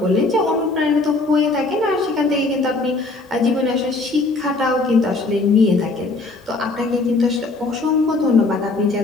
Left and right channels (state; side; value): quieter; right; 3.4 dB